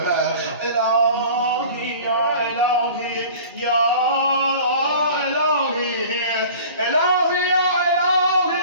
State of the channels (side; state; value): both; inverted; correlation -0.43